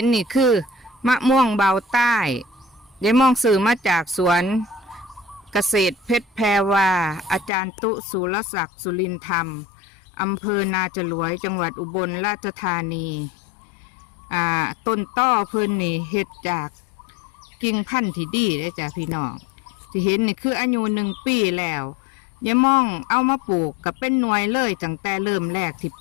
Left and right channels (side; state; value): right; drops out; at 7.5 s